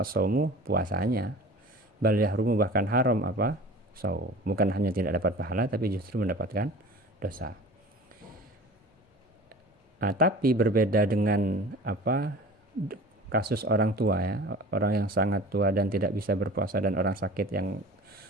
puasanya. Bal yahrumu, bahkan haram apa? Shaum. Bukan hanya tidak dapat pahala, tapi justru mendapatkan dosa. Nah, tapi berbeda dengan kasus orang tua ya, orang yang sangat tua dan tidak bisa berpuasa, dan orang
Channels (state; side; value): normal; both; correlation 0.40